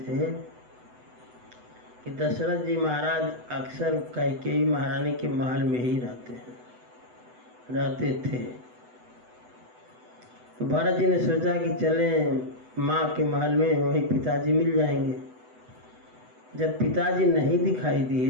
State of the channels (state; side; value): late; left; 8.0 ms